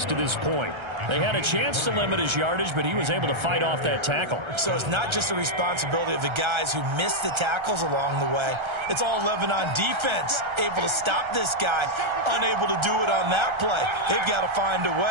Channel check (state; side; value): late; left; 1.3 ms